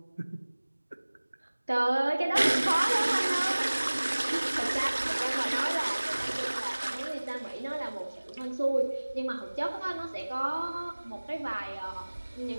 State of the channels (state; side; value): inverted; both; correlation -1.00